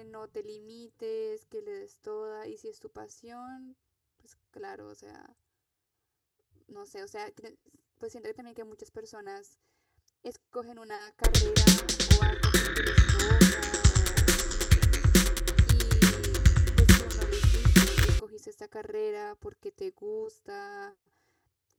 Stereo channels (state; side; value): identical; both; correlation 1.00